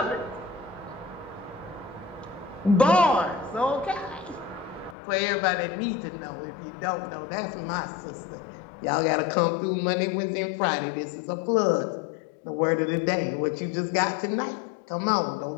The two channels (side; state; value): right; drops out; at 5.0 s